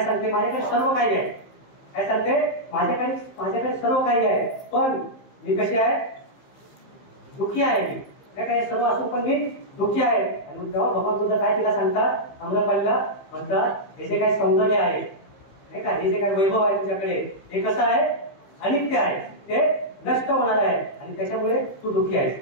सांगते? माझ्याकडे सर्व काही आहे. काय सांगते? माझ्याकडे सर्व काही आहे, पण मी कशी आहे? दुःखी आहे. मी काय सर्व असून पण मी दुःखी आहे. आणि तेव्हा भगवान बुद्ध काय तिला सांगतात? आम्रपालीला म्हणतात, हे जे काही सौंदर्य आहे, नाही का, हे जे काही वैभव आहे तुझ्याकडे, हे कसं आहे? अनित्य आहे, ते नष्ट होणार आहे, आणि त्याच्यामुळे तू दुःखी आहेस.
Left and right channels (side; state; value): right; late; 15 ms